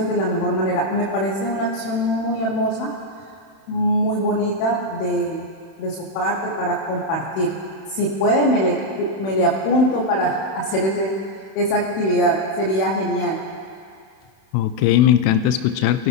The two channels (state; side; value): late; right; 31 ms